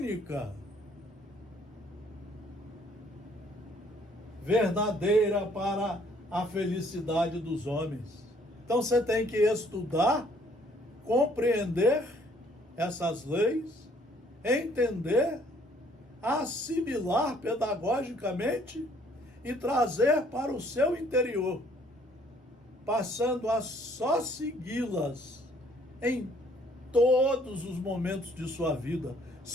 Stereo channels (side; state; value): both; normal; correlation 0.62